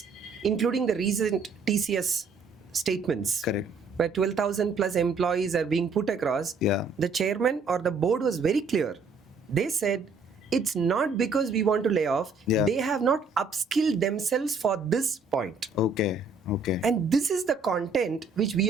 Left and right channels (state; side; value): quieter; left; 4.2 dB